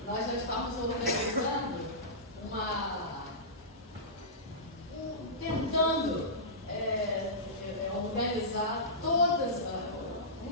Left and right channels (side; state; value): both; normal; correlation -0.18